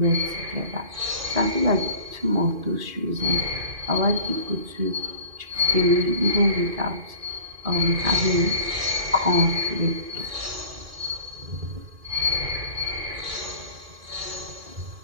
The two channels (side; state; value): left; late; 2.5 ms